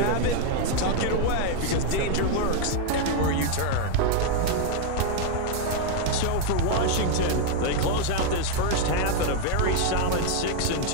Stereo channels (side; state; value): both; different; correlation 0.01